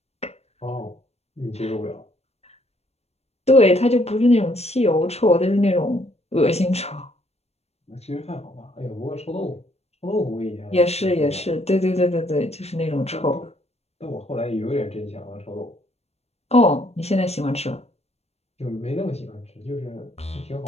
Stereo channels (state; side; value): late; right; 0.31 ms